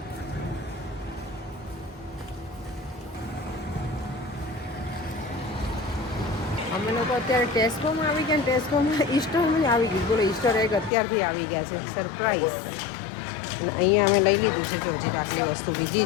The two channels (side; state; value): right; drops out; at 10.9 s